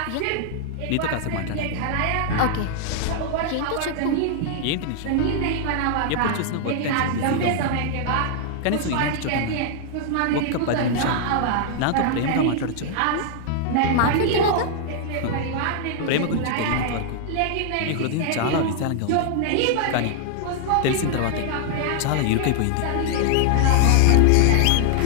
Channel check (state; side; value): different; both; correlation 0.00